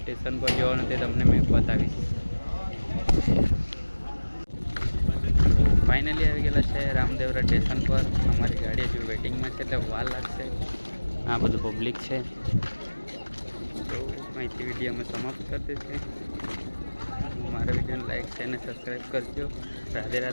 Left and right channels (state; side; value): inverted; both; correlation -1.00